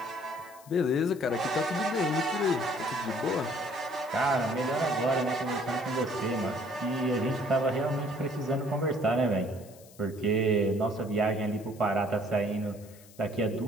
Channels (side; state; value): left; noise; hiss, 23 dB below the sound